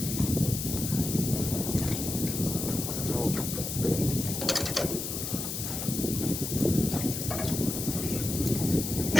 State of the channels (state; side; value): noise; left; hiss, 4 dB below the sound